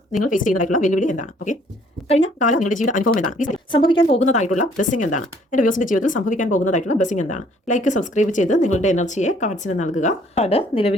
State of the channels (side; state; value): both; normal; correlation 0.61